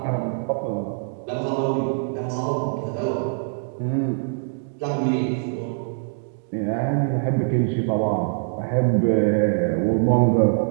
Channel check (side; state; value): left; silent; digital silence